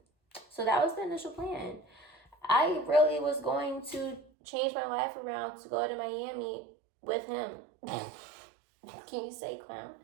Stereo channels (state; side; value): drops out; left; at 4.3 s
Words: So that was the initial plan. I really was going to change my life around to go to Miami with him. Can you say clown?